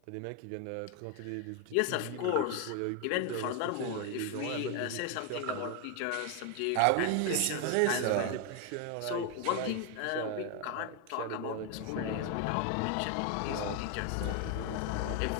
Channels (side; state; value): both; different; correlation 0.01